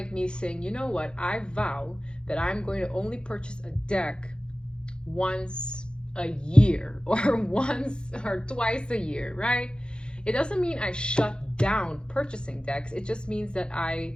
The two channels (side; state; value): right; late; 0.050 ms